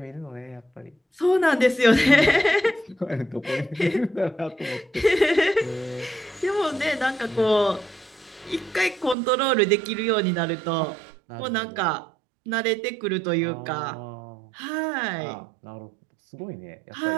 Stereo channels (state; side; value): drops out; left; at 9.2 s